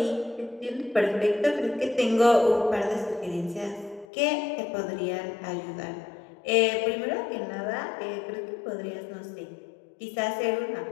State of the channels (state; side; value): drops out; right; at 4.0 s